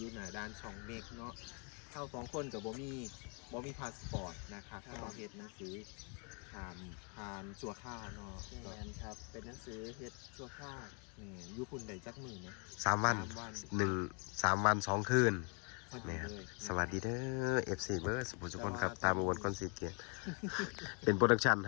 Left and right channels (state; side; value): quieter; right; 36.1 dB